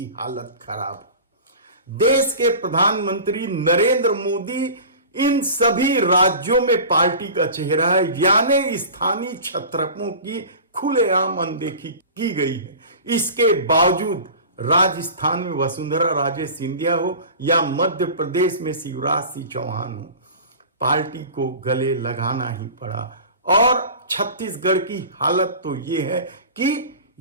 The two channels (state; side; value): inverted; both; correlation -0.36